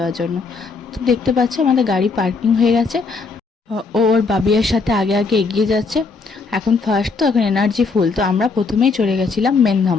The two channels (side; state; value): right; quieter; 4.3 dB